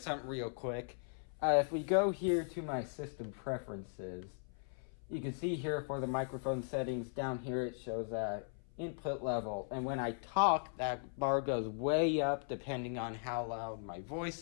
something real quick. If we go here to my system preferences, you can see here for the microphone settings, down here it shows input level. And when I talk, that bar goes way up depending on how loud my voice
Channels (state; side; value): silent; right; 52 dB below the other